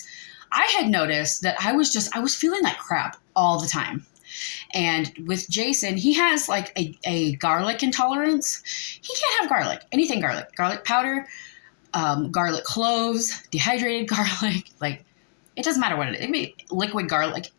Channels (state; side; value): silent; right; digital silence